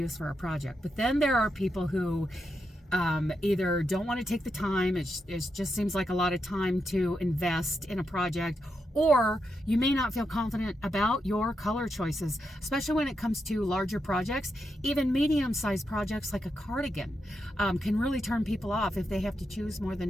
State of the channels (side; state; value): both; normal; correlation 0.84